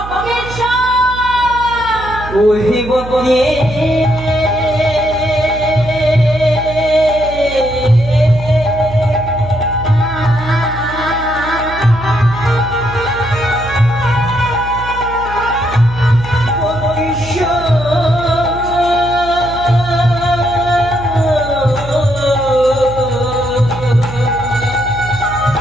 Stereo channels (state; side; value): noise; right; hum, 11 dB below the sound